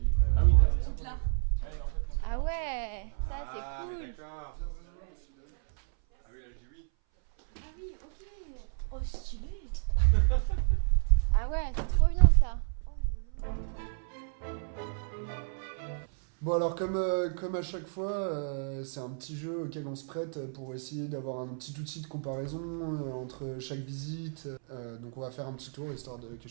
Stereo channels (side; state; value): left; silent; 57 dB below the other